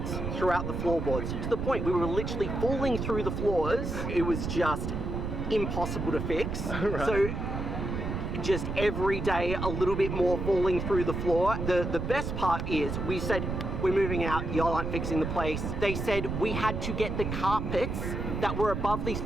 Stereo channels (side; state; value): right; noise; rumble, 3 dB below the sound